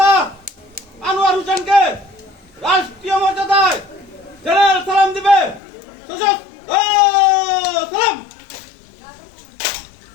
আনোয়ার হোসেনকে রাষ্ট্রীয় মর্যাদায় জেনারেল সালাম দিবে। সশস্ত্র সালাম।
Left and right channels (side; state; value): right; drops out; at 5.6 s